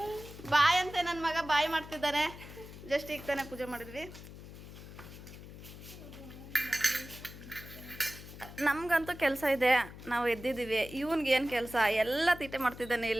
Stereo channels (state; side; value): noise; left; hum, 15 dB below the sound